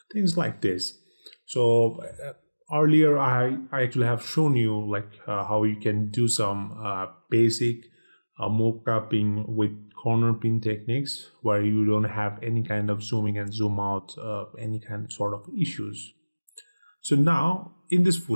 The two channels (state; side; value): inverted; both; correlation -1.00